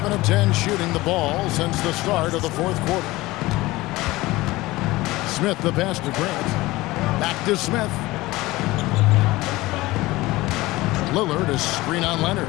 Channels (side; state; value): right; quieter; 19.4 dB